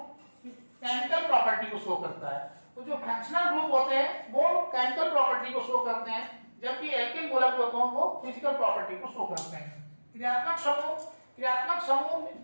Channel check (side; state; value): both; inverted; correlation -1.00